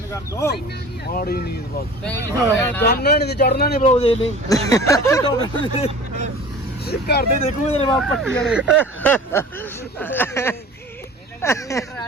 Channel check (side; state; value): both; normal; correlation 0.41